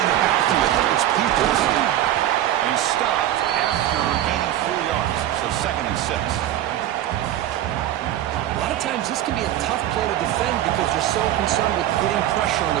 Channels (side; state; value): left; quieter; 12.6 dB